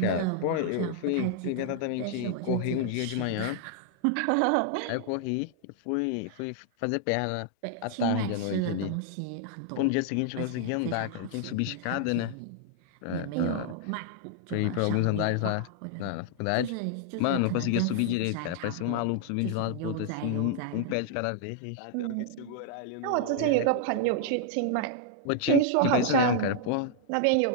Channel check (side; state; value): both; different; correlation -0.01